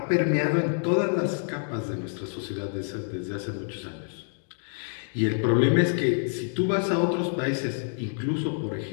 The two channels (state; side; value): silent; right; 60 dB below the other